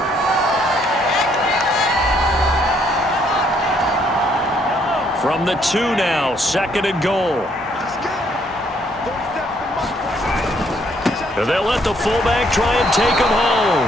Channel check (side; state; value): both; normal; correlation 0.68